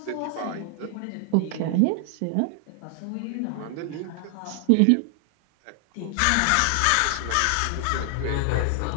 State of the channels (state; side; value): different; both; correlation 0.00